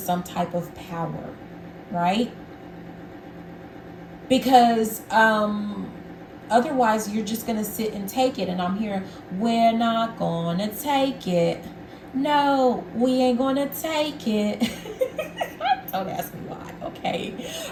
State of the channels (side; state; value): both; identical; correlation 1.00